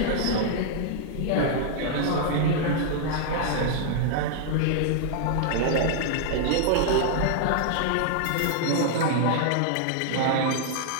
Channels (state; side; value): different; both; correlation -0.01